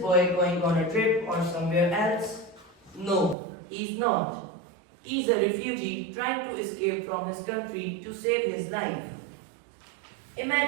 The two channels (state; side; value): drops out; left; at 3.4 s